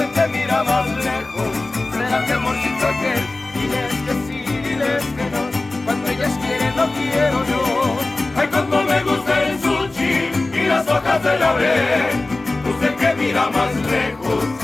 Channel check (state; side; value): quieter; right; 3.1 dB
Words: que mira más lejos, será mi amorcito aquel. Diles que sí, diles que no, cuando ellas quieren no quiero yo. Ay, como me gusta el sushi y las hojas de laurel. Usted que mira más lejos,